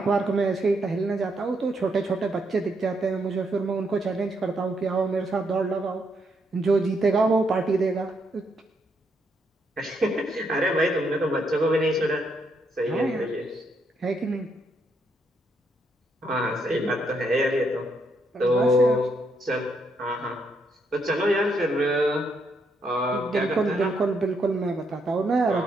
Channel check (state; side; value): normal; both; correlation 0.76